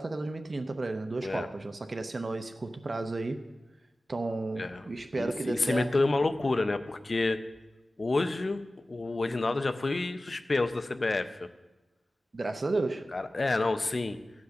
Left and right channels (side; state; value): both; normal; correlation 0.96